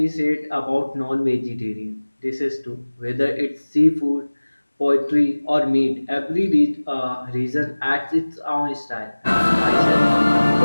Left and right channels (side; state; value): both; inverted; correlation -1.00